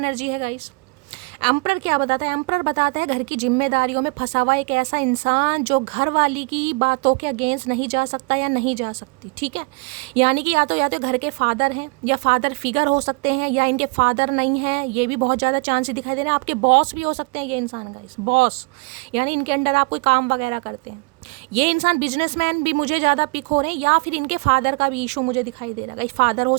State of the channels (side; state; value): left; quieter; 29.9 dB